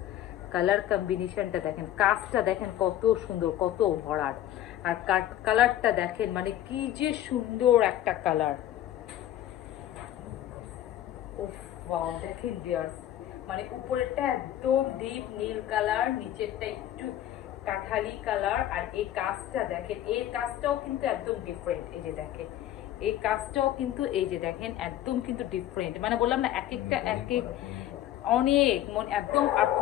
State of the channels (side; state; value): right; quieter; 12.5 dB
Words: কালার কম্বিনেশনটা দেখেন, কাজটা দেখেন কত সুন্দর, কত ভরাট, আর কালারটা দেখেন মানে কি যে সুন্দর একটা কালার। ওয়াও দেখেন ভিউয়ার্স, মানে উপরেরটা একদম ডিপ নীল কালার, নিচেরটা একটু কাঠালি কালার, আর এই কাজটা দেখেন, এই কাজটাও কিন্তু একদম ডিফারেন্ট। এই যে দেখেন এই কাজটাও কিন্তু, এই যে দেখেন একদম কিন্তু ডিফারেন্ট, মানে বললাম না এক একটা এক এক অনেক একদম। আর